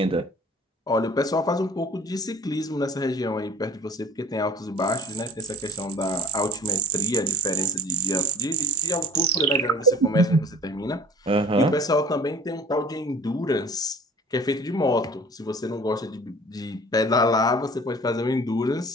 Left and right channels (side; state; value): both; normal; correlation 0.45